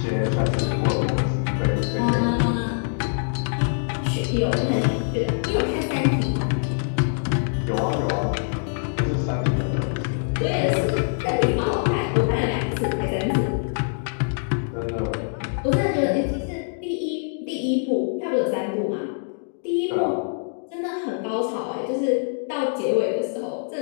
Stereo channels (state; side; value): silent; right; digital silence